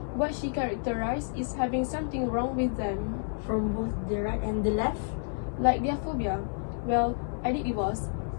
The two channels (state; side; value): silent; right; digital silence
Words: what she characterized is having something wrong with them. From both the right and the left? Like their phobia. Well, I think it was.